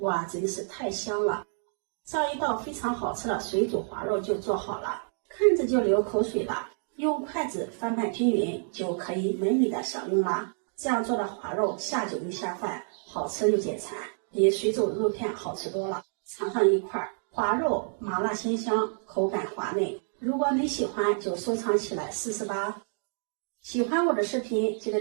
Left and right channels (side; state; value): left; silent; 59 dB below the other